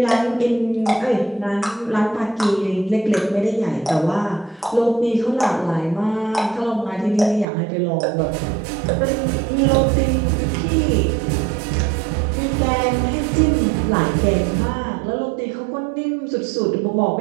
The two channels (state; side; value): drops out; left; at 7.5 s